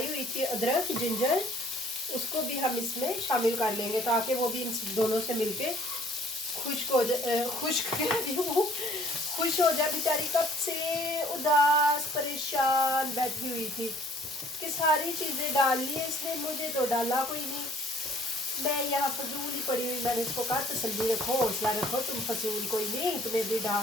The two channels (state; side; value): normal; both; correlation 0.57